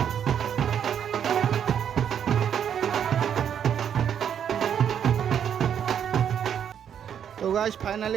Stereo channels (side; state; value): left; quieter; 8.6 dB